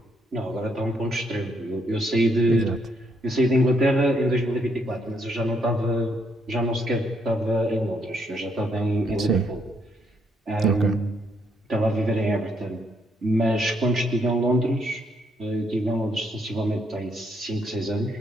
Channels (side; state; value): both; normal; correlation 0.73